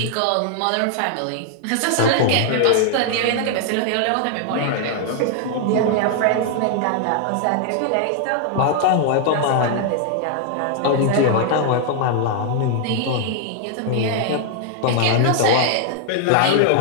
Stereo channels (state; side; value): different; both; correlation 0.00